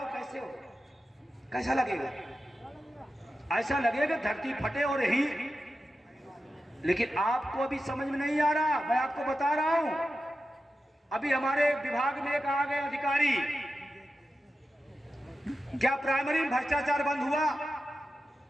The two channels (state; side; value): normal; both; correlation 0.91